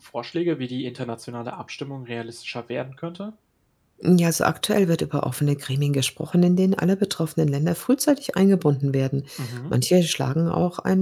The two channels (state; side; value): identical; both; correlation 1.00